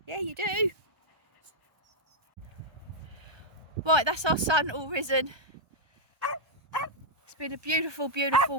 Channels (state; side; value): late; left; 1.3 ms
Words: Yeah, you do. Right, that's our sun all risen. It's been a beautiful